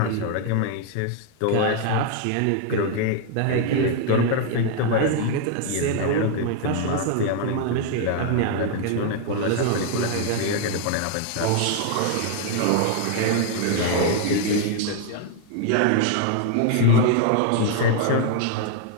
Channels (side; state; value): both; different; correlation 0.00